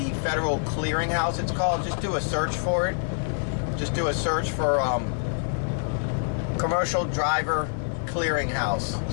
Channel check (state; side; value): silent; right; digital silence